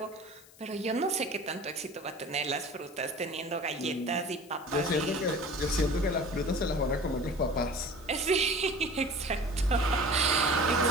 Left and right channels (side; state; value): left; noise; hiss, 24 dB below the sound